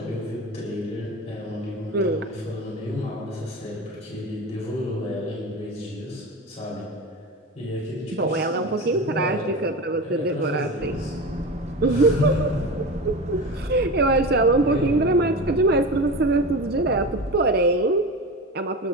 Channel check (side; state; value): both; normal; correlation 0.27